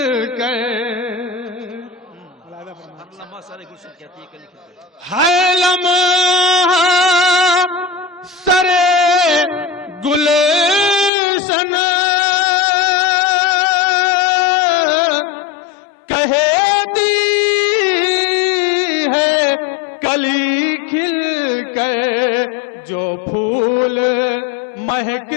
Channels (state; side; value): drops out; right; at 11.1 s